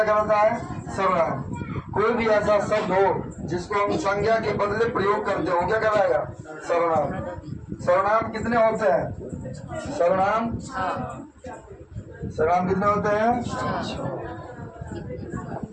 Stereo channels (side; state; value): both; identical; correlation 1.00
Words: कहलाता है? सर्वनाम। कोई भी ऐसा शब्द हो जिसको हम संज्ञा के बदले प्रयोग करते हो, क्या कहलाएगा? सर्वनाम। सर्वनाम कितने होते हैं? सर्वनाम सर्वनाम कितने होते हैं?